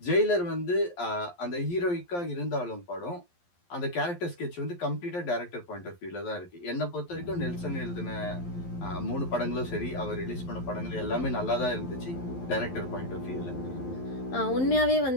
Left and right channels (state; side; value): late; right; 11 ms